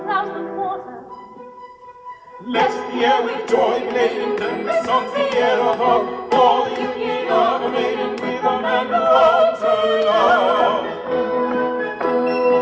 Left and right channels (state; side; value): identical; both; correlation 1.00